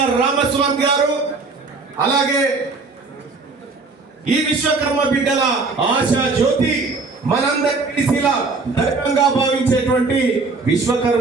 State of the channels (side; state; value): left; quieter; 4.0 dB